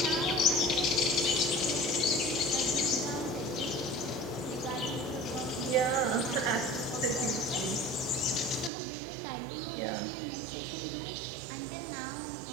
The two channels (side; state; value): left; drops out; at 8.7 s